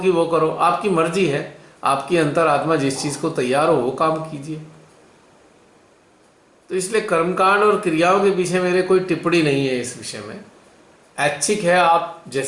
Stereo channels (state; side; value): identical; both; correlation 1.00